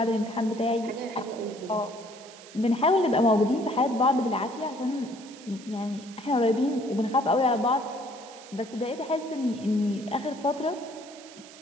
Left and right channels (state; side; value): noise; right; hiss, 19 dB below the sound